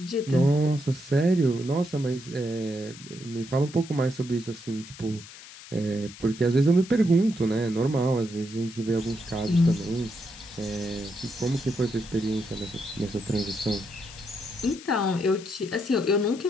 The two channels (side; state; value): left; noise; hiss, 17 dB below the sound